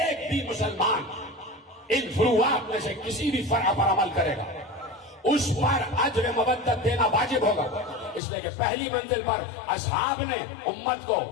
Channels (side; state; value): right; drops out; at 8.2 s